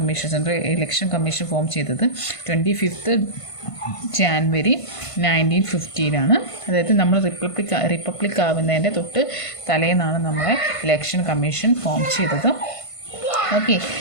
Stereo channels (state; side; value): late; right; 1.5 ms